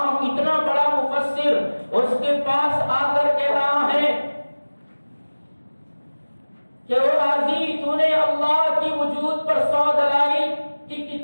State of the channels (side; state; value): both; inverted; correlation -1.00